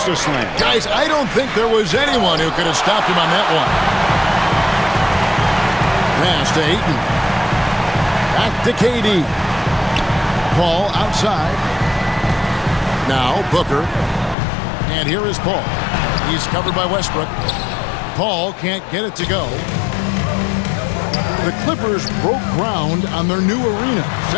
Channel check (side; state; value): right; drops out; at 14.4 s